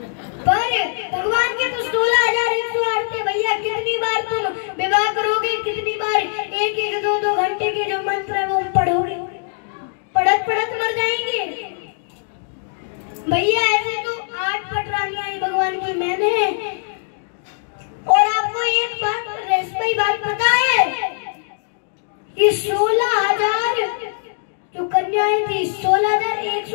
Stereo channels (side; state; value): right; silent; digital silence